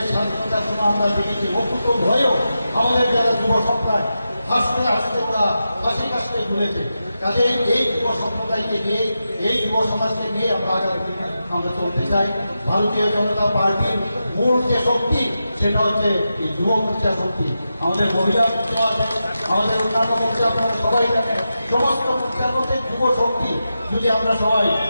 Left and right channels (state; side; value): inverted; both; correlation -0.89